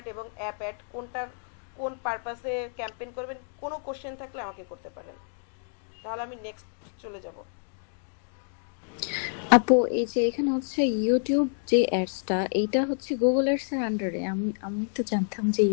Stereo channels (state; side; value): silent; right; digital silence